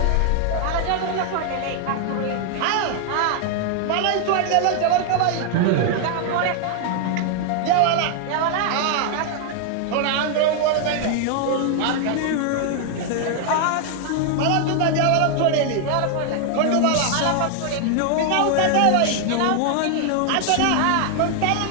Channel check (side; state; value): both; different; correlation 0.00